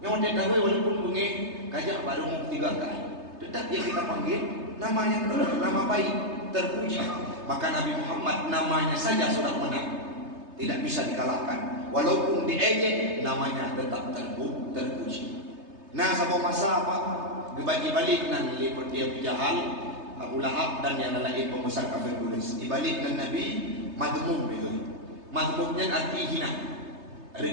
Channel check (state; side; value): late; left; 3.3 ms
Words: Yang dia tahu walaupun bunyi kajak baru mau 3 kali. Tetap yang kita panggil nama yang nama baik, terpuji. Maka Nabi Muhammad namanya saja sudah menang. tidak bisa dikalahkan. Walaupun diejek, namanya tetap terpuji. Nah, sama masa apa? Dibagi-balik nan lipat dia Abu Jahal, Abu Lahab dan yang lain pembesar kafir Quraisy. Dibalik nan Nabi madmum begitu. Madmumnya arti hina,